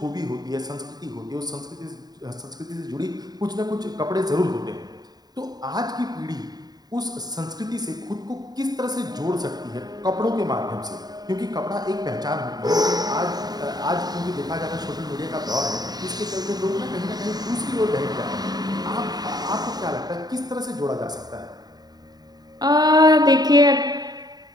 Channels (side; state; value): left; late; 0.19 ms